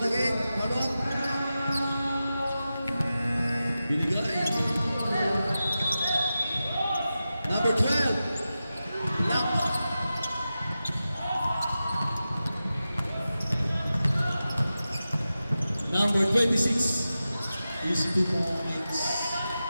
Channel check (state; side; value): inverted; both; correlation -0.93